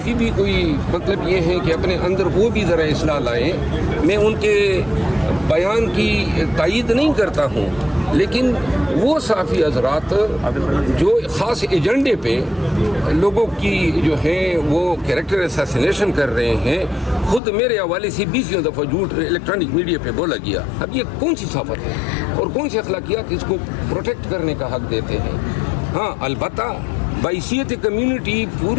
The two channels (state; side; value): drops out; right; at 17.4 s